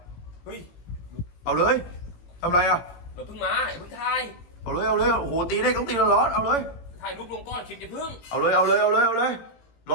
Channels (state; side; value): late; right; 17 ms